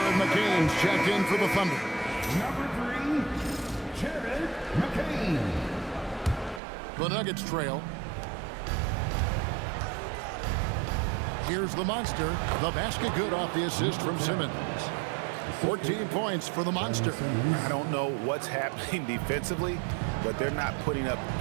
McCain's checked in for the Thunder. Number 3, Jared McCain. The Nuggets trail. Here's the monster. The basket good off the assist from Simmons. 14 points for the monster. I don't know what's happening defensively, but they're not putting up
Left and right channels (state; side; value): drops out; left; at 6.6 s